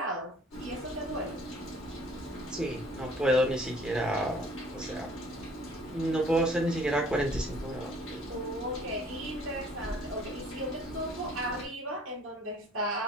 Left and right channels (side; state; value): both; normal; correlation 0.55